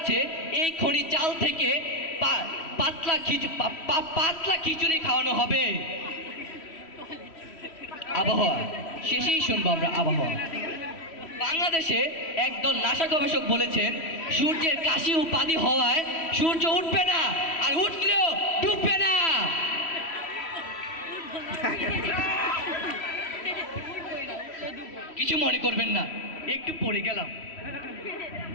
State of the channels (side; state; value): right; late; 3.1 ms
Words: এই খনি চাল থেকে পাতলা খিচুড়ি খাওয়ানো হবে। আবহাওয়া। শেষেই শুনবো আমরা আবহাওয়া। বাংলাদেশে একদল নাসা গবেষক বলেছেন সূর্যের কাশি উপাধি হওয়ায় সূর্য উঠবে না, আর উঠলেও ডুববে না। কিছু মনে করবেন না, একটু পড়ে গেলাম।